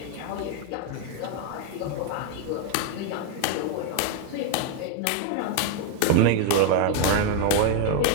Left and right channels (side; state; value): both; different; correlation 0.01